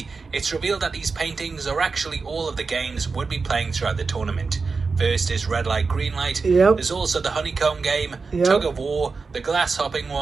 it's revealed that these paintings are actually all of the games would be playing throughout the tournament. First is red light, green light. Yep. There's also the honeycomb game, yep, tug of war, the glass hopping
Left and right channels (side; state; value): left; quieter; 4.5 dB